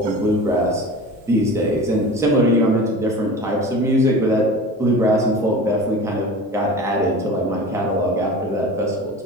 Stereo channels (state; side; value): normal; both; correlation 0.35